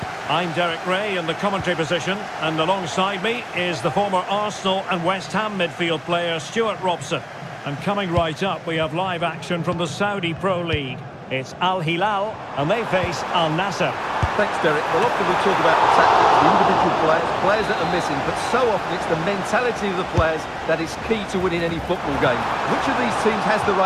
I'm Derek Ray in the commentary position, and alongside me is the former Arsenal and West Ham midfield player Stuart Robson. And coming right up, we have live action from the Saudi Pro League. It's Al Hilal, and they face Al Nassr. Thanks, Derek. Well, often we talk about the tactics, the individual players that are missing, but so often it's the mentality of the players that is key to winning any football game. Which of these teams has the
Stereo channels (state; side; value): identical; both; correlation 1.00